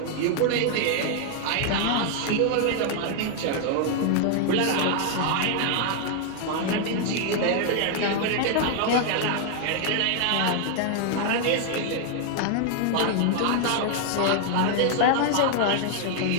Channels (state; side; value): different; both; correlation 0.00